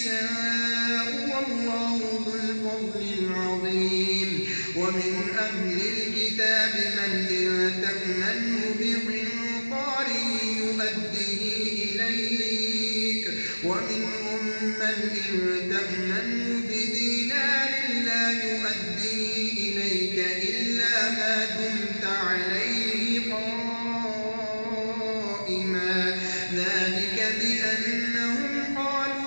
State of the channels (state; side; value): inverted; both; correlation -1.00